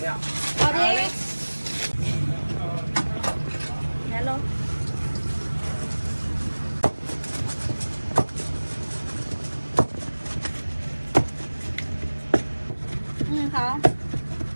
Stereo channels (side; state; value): both; inverted; correlation -1.00